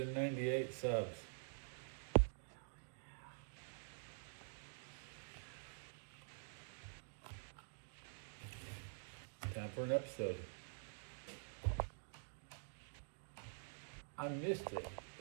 subs. Time for an episode. I missed it.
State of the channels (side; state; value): left; silent; digital silence